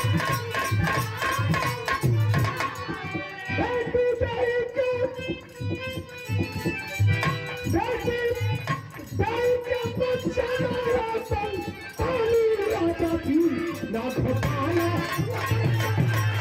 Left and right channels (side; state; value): both; identical; correlation 1.00